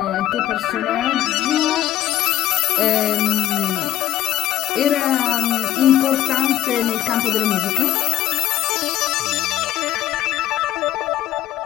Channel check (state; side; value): quieter; right; 13.0 dB